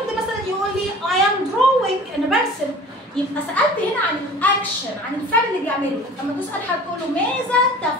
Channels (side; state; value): both; normal; correlation 0.44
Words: مثلا يقول لي I am drawing، انا برسم. يبقى سالت هنا عن الاكشن، عن الفعل اللي بيعمله. لما تسال حد تقول له ماذا